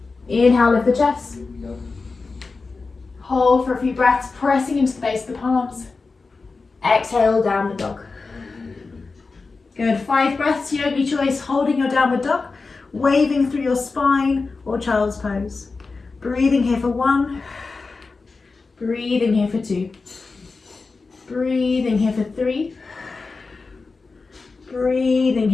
Inhale, lift the chest. Hold for a few breaths, pressing into the base of the palms. Exhale, downward dog. Good, 5 breaths, yogi choice, holding your downward dog, waving through your spine or child's pose. Breathing here for 1. Breathing here for 2. Breathing here for 3. Breathing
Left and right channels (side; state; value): right; quieter; 4.1 dB